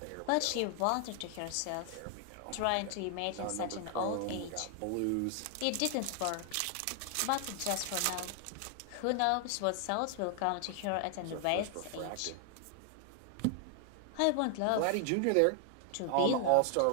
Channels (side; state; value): both; different; correlation 0.00